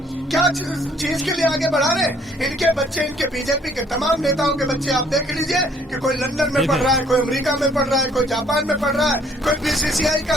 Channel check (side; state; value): both; normal; correlation 0.62